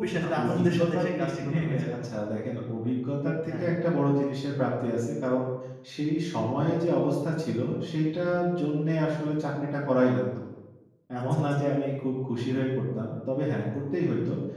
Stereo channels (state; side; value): identical; both; correlation 1.00